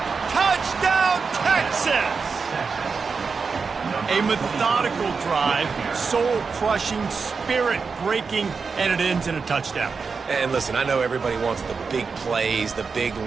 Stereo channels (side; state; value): left; quieter; 5.1 dB